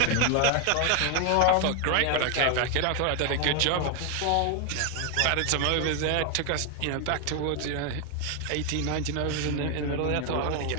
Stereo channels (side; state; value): both; different; correlation 0.01